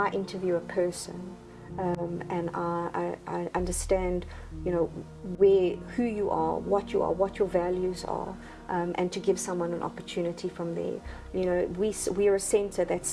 interview a person. And I understand, you know, who you are, what your values are, and to give someone an opportunity from there. You know, we are a centre that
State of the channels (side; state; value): both; identical; correlation 1.00